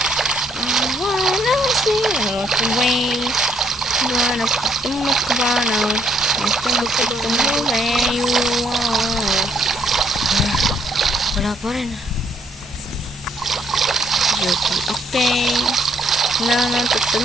Wala siya. Ito way. Wala pa tumakbanaw. Ito ba tumuloy. Wala pa rin. Okay. Na.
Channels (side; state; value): both; normal; correlation 0.68